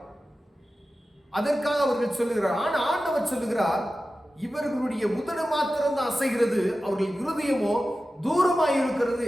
அதற்காக அவர்கள் சொல்லுகிறார். ஆனா ஆண்டவர் சொல்லுகிறார், இவர்களுடைய உதடு மாத்திரம் தான் அசைகிறது, அவர்கள் இருதயமோ தூரமாய் இருக்கிறது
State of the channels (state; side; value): normal; both; correlation 0.94